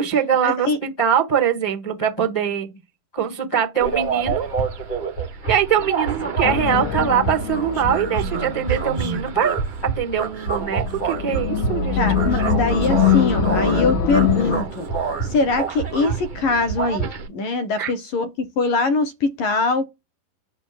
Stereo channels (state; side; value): late; right; 11 ms